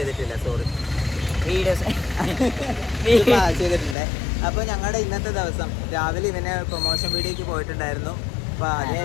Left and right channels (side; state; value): right; drops out; at 4.0 s